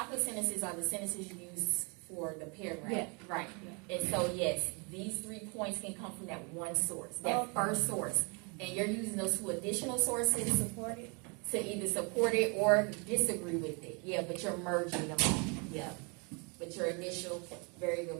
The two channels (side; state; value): left; quieter; 32.8 dB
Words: sentences are the sentences you use for the paragraph. Yeah. Right. Yeah. And so yes, these 3 points can come from that one source, that first source. And you're using those 2 additional sources Support it. to either support it or disagree with it. Yeah, but you're merging them all. Yeah. But your initial, very